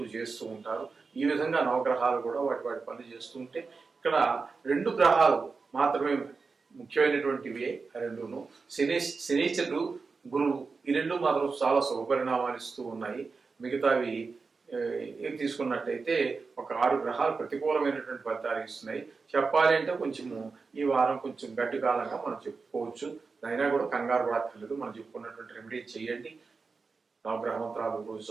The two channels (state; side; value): quieter; left; 4.5 dB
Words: చేస్తూ ఉంటారు. ఈ విధంగా నవగ్రహాలు కూడా వాటి వాటి పనులు చేస్తూ ఉంటే ఇక్కడ 2 గ్రహాలు మాత్రమే ముఖ్యమైనటువంటివి. రెండును శనీశ్వరుడు, గురువు, ఈ 2 మాత్రం చాలా శుభపరిణామాలు ఇస్తూ ఉన్నాయి. మిగతావి ఏం తీసుకున్నట్టయితే ఒక 6 గ్రహాలు ప్రతికూలమైనటువంటి ఫలితాలు ఇస్తున్నాయి. చెప్పాలి అంటే కొంచెము ఈ వారం కొంచెం గడ్డి కాలంగా మనం చెప్పుకోవచ్చు. అయినా కూడా కంగారు పడక్కర్లేదు. మనం చెప్పుకున్నటువంటి రెమెడీ చేయండి. నవగ్రహ మంత్రాలు రోజు